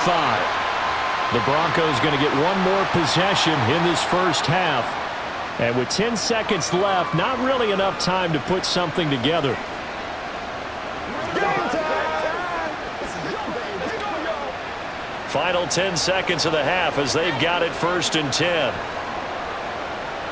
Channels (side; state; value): both; identical; correlation 1.00